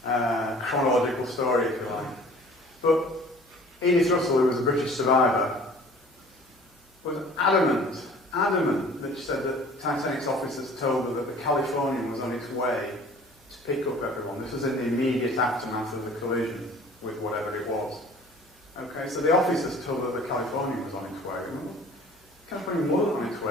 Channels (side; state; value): both; normal; correlation 0.49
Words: chronological story, if you like. But Edith Russell, who was a British survivor, was adamant that she said that Titanic's officers told her that the Californian was on its way to pick up everyone. This was in the immediate aftermath of the collision with whatever it was. Okay, so the officers told her the Californian was on its way. The Californian wasn't on its